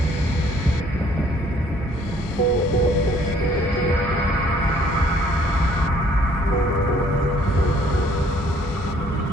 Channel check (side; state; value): both; normal; correlation 0.61